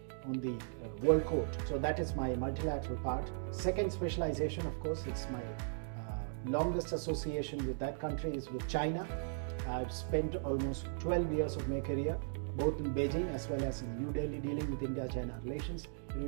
on the World Court. So that is my multilateral part. Second specialization, of course, it's my longest association with that country is with China. I've spent almost 12 years of my career both in Beijing as well as in New Delhi dealing with India-China relations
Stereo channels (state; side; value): silent; left; digital silence